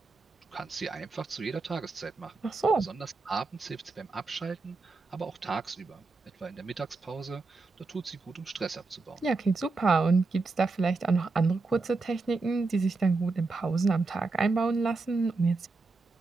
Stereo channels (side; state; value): left; quieter; 3.8 dB